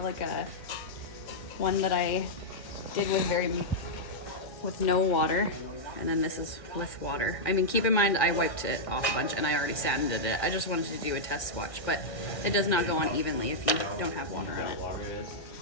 like a one that I did with no water, and then this is with water. I mean, keep in mind I wiped it off a bunch and I already sanded it. I just wanted to do a test swatch, but it does not go on evenly if you don't have water in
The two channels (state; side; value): late; right; 1.6 ms